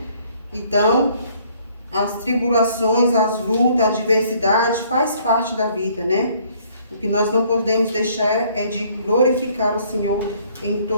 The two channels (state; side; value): inverted; both; correlation -0.62